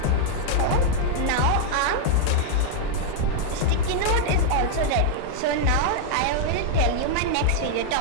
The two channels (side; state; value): both; different; correlation 0.00